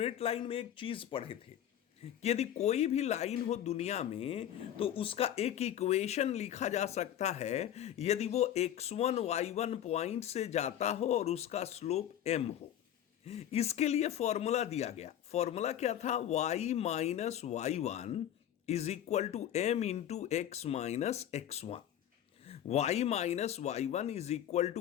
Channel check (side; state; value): right; quieter; 10.7 dB